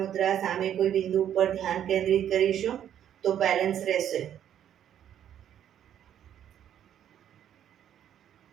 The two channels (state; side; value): quieter; left; 10.1 dB